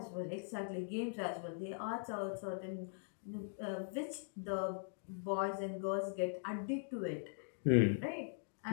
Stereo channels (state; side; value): silent; right; digital silence